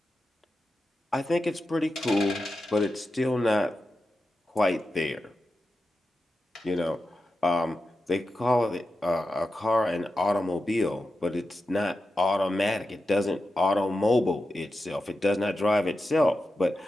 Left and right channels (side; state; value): both; normal; correlation 0.91